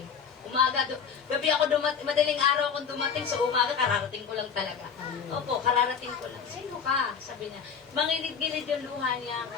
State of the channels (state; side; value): quieter; right; 6.7 dB